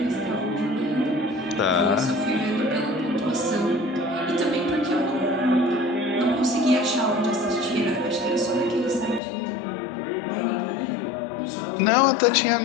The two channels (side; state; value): right; drops out; at 9.2 s